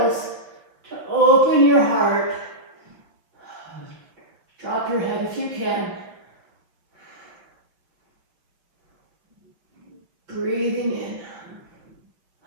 to open your heart. Drop your head if you can. Breathing in.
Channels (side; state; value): left; late; 5.8 ms